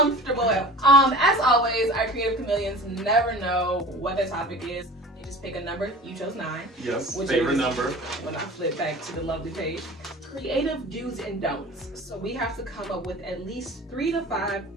As always, our creative chameleons never know what the topic is. They just pick a number. You chose 9. Yes. Which Favorite is, number. When I flip back to the lovely page, creative do's and don'ts. So we have to come up with at least 3 to 5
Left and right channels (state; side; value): normal; both; correlation 0.39